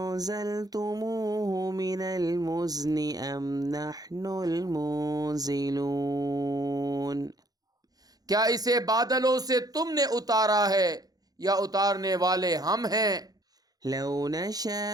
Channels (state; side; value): late; left; 0.19 ms